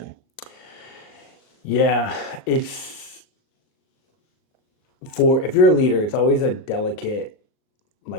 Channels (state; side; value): late; right; 38 ms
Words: Yeah, it's if you're a leader, it's always a delicate